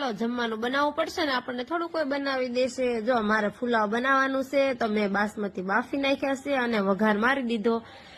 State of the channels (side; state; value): both; identical; correlation 1.00